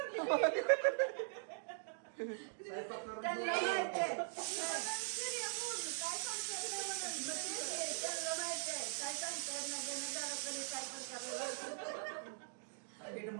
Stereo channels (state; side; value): silent; left; digital silence